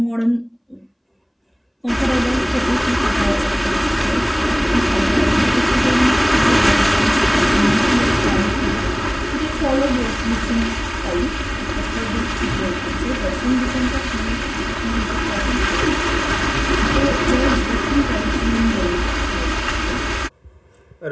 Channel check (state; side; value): identical; both; correlation 1.00